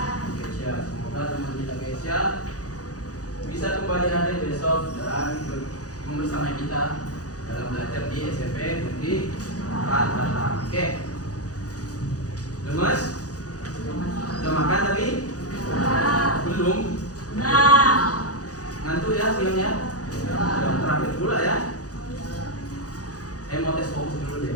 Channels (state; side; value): late; right; 0.67 ms